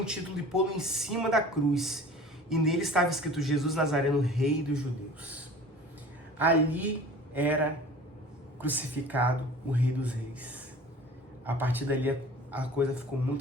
título de pô-lo em cima da cruz, e nele estava escrito: Jesus Nazareno, Rei dos Judeus. Ali era crucificado o Rei dos Reis. A partir dali a coisa ficou muito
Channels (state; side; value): normal; both; correlation 0.43